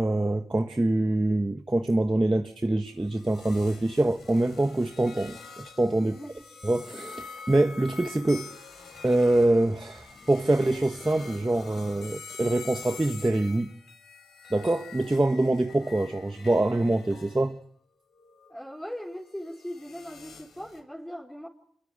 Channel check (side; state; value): both; normal; correlation 0.96